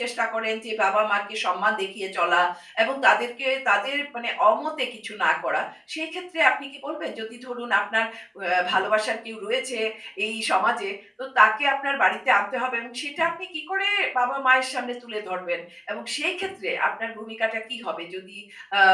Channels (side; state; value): both; identical; correlation 1.00